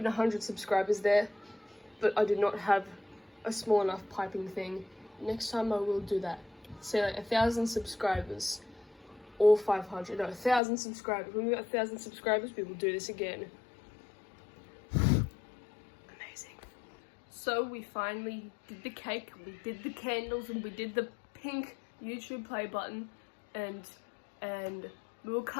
100 subscribers there, but I did not have a small enough piping thing. Next time I will do that. Say like 1,000 subscribers. Or 500, no, 1,000 subscribers. When we got 1,000 subscribers, we will do this again. Amazing. So we finally did the cake, we did the candles, and we did the pink YouTube play button, and we will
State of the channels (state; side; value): drops out; right; at 10.6 s